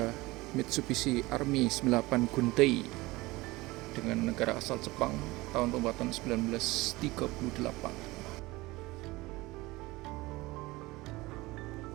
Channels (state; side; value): quieter; left; 20.9 dB